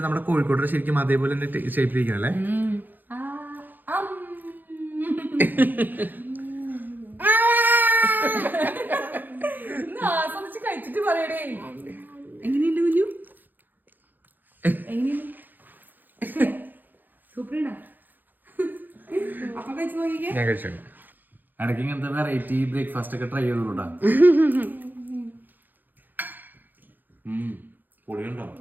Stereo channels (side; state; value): left; late; 0.088 ms